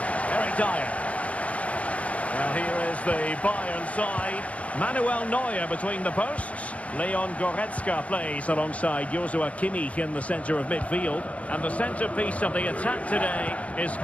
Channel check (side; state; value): right; late; 0.065 ms